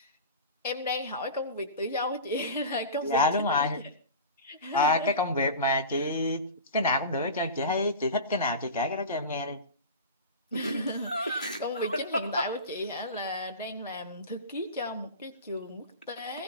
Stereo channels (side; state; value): both; inverted; correlation -0.31